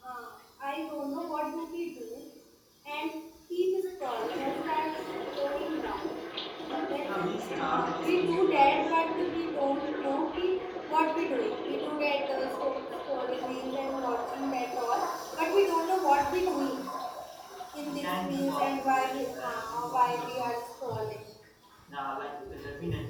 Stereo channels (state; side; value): identical; both; correlation 1.00